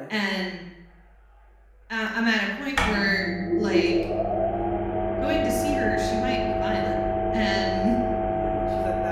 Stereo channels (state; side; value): identical; both; correlation 1.00